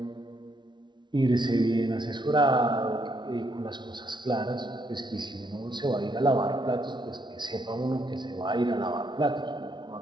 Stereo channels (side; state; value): left; late; 0.22 ms